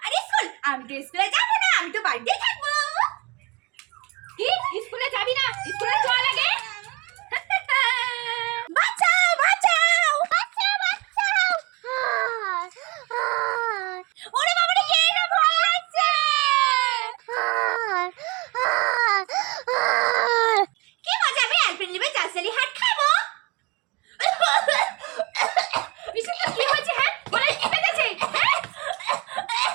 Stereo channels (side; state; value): left; quieter; 26.0 dB